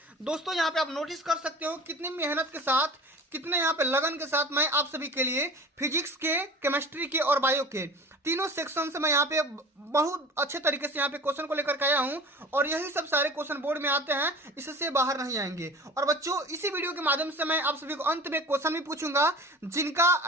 दोस्तों, यहाँ पे आप नोटिस कर सकते हो कितनी मेहनत के साथ, कितने यहाँ पे लगन के साथ मैं आप सभी के लिए फिजिक्स के, केमिस्ट्री के और बायो के तीनों सेक्शन से मैं यहाँ पे बहुत अच्छे तरीके से यहाँ पे क्वेश्चन को लेकर के आया हूँ, और यही सब सारे क्वेश्चन बोर्ड में आते हैं, इससे बाहर नहीं आएंगे। और बच्चों, इसी वीडियो के माध्यम से मैं आप सभी को अंत में क्वेश्चन भी पूछूंगा, जिनका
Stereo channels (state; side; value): normal; both; correlation 0.40